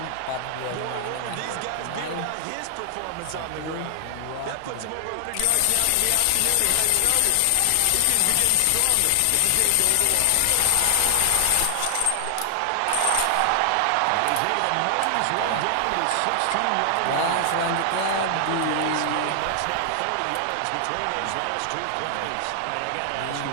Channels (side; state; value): both; different; correlation 0.00